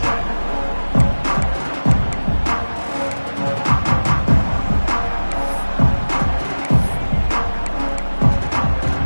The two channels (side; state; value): both; inverted; correlation -1.00